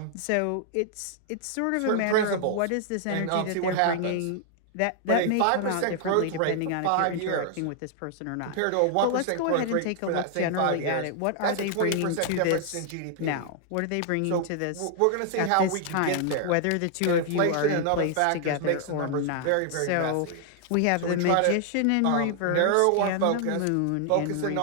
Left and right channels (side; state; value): both; different; correlation 0.00